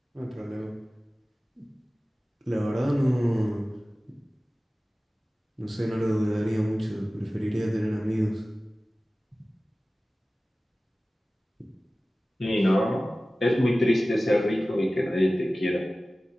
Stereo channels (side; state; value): both; normal; correlation 0.97